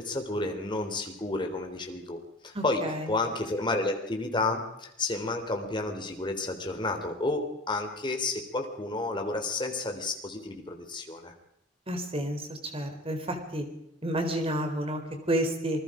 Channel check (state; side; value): normal; both; correlation 0.40